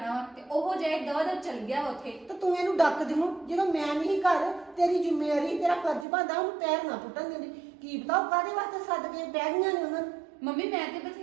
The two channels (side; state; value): left; drops out; at 6.1 s